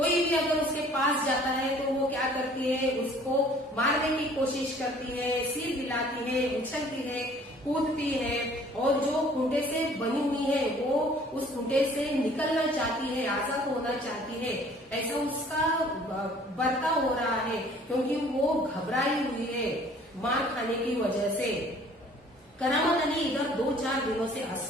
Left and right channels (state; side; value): normal; both; correlation 0.54